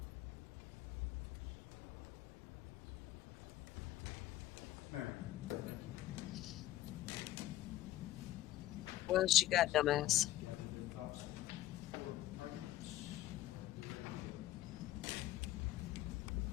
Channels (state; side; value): quieter; right; 14.6 dB